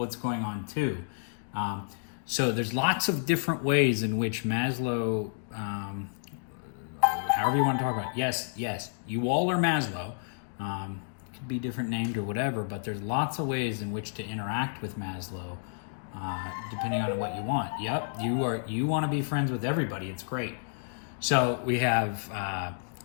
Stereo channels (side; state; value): right; silent; digital silence